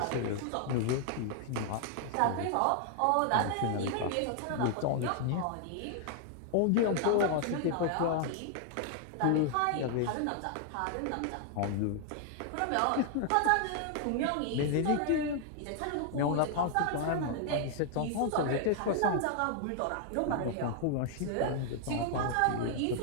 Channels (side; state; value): both; different; correlation 0.00